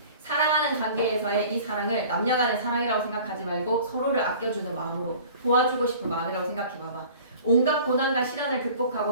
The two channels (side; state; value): both; inverted; correlation -0.46